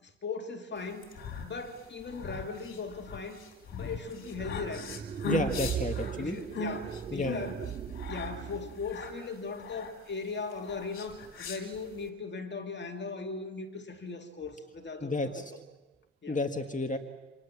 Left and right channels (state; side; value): normal; both; correlation 0.28